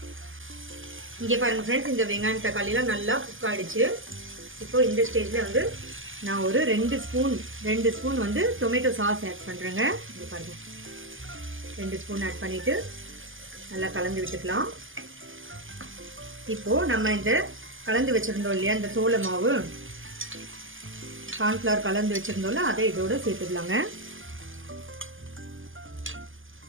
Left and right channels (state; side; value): late; left; 0.58 ms